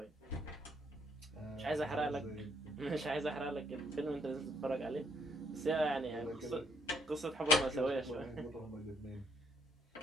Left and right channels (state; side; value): normal; both; correlation 0.70